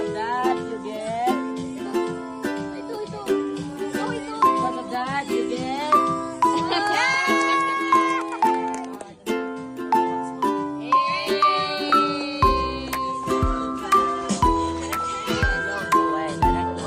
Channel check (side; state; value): both; identical; correlation 1.00